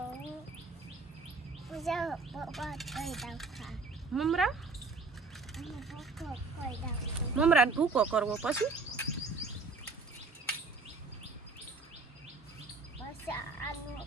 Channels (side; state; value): left; quieter; 4.0 dB